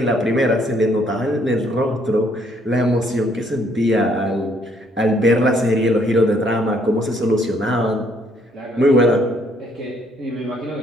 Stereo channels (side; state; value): both; normal; correlation 0.67